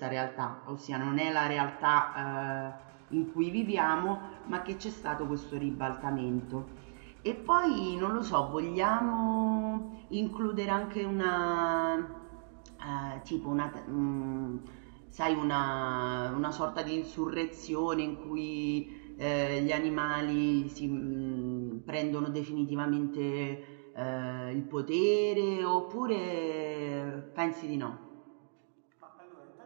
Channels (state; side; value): silent; left; digital silence